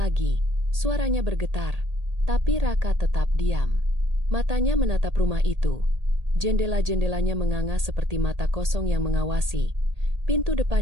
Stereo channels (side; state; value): left; late; 1.8 ms